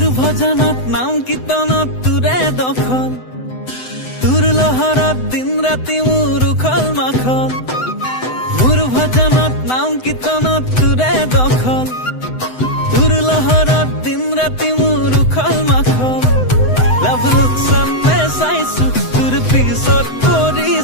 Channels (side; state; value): right; late; 7.9 ms